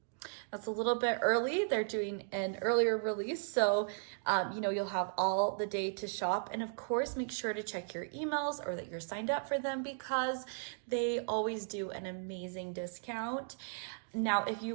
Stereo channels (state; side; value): silent; left; digital silence